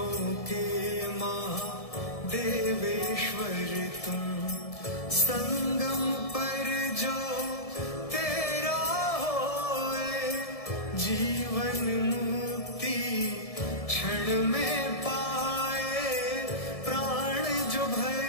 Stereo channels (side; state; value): right; late; 1.7 ms